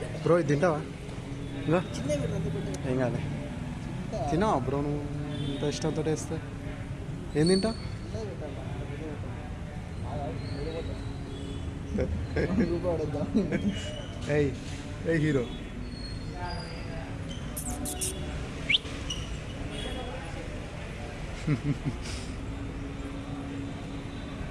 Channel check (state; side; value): identical; both; correlation 1.00